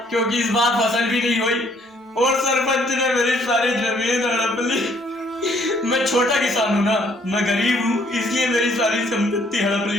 क्योंकि इस बार फसल भी नहीं हुई और सरपंच ने मेरी सारी जमीन हड़प ली। मैं छोटा किसान हूँ ना, मैं गरीब हूँ, इसलिए मेरी सारी संपत्ति हड़प ली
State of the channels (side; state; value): both; normal; correlation 0.65